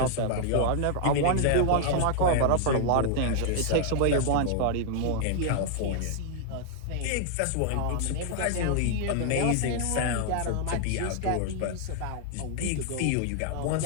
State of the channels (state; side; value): different; both; correlation 0.00